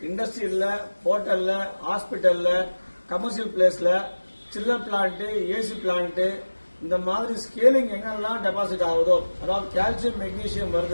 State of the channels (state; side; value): inverted; both; correlation -1.00